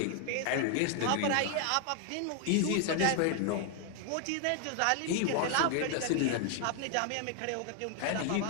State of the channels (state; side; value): different; both; correlation 0.00